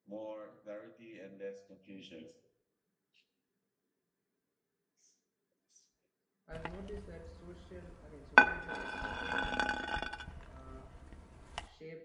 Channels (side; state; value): both; identical; correlation 1.00